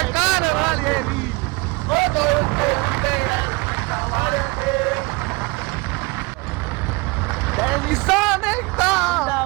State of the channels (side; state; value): left; quieter; 25.1 dB